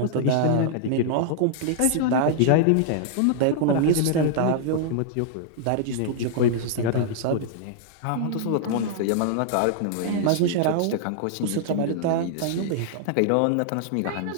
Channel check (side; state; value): both; different; correlation -0.01